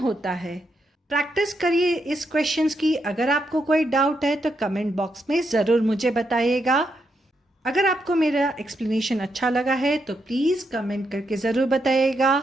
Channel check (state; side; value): normal; both; correlation 0.81